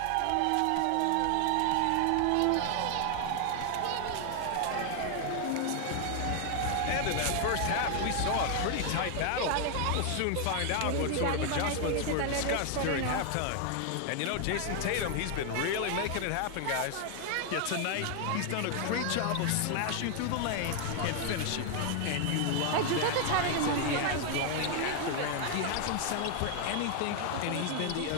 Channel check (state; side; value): different; both; correlation 0.00